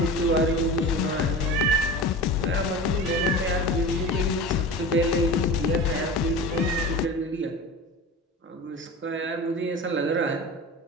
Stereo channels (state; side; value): normal; both; correlation 0.31